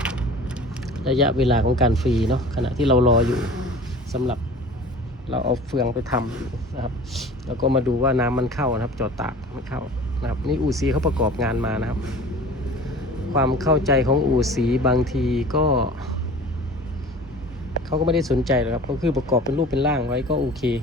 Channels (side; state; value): both; normal; correlation 0.42